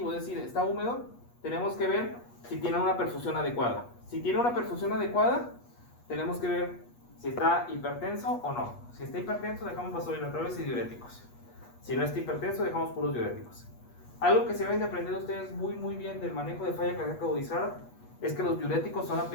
es decir, está húmedo, tenemos que ver si tiene una perfusión adecuada. Si tiene una perfusión adecuada, tenemos que ver si está hipertenso o no. Si está hipertenso, dejamos vasodilatadores y diuréticos. Si no está hipertenso, dejamos puros diuréticos. Algo que se deben de aprender ustedes muy bien del manejo de falla cardíaca agudizada es que los diuréticos son la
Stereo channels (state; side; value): late; right; 8.3 ms